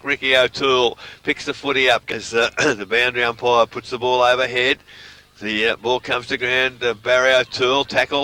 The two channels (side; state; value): both; identical; correlation 1.00